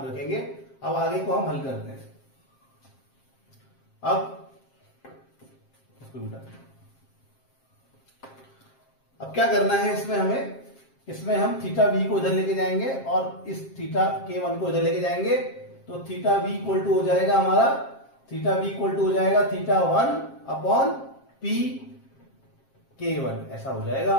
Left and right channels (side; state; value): right; late; 7.5 ms